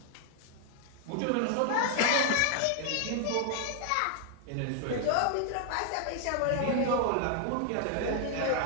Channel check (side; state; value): both; different; correlation 0.00